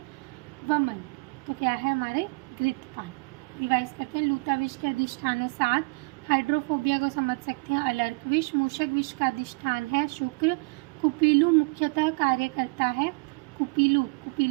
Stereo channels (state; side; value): quieter; left; 31.3 dB